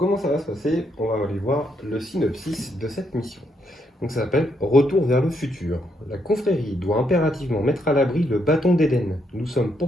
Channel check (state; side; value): normal; both; correlation 0.76